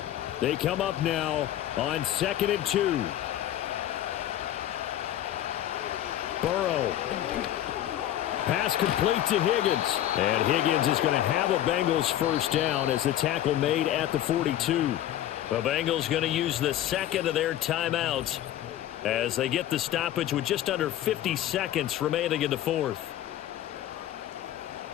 They come up now on 2nd and 2. Burrow. Pass complete to Higgins. And Higgins is going to have a Bengals first down as the tackle made at the 42. The Bengals going to use the 2nd of their timeouts as they get the stoppage with just under 50 seconds remaining in the 4th.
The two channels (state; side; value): quieter; right; 12.4 dB